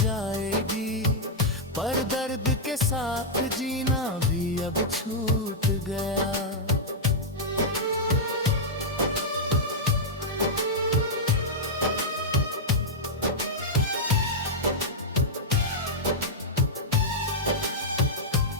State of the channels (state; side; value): normal; both; correlation -0.05